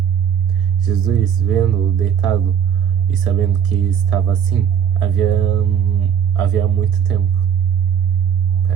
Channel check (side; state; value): left; quieter; 8.3 dB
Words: Jesus, vendo-o deitado e sabendo que estava assim, havia muito tempo.